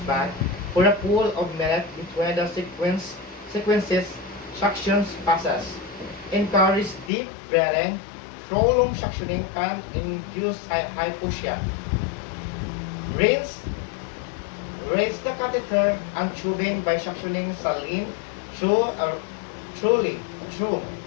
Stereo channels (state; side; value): drops out; right; at 7.1 s